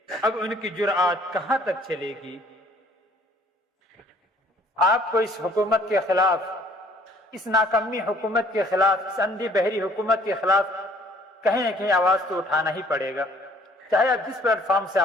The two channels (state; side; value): normal; both; correlation 0.58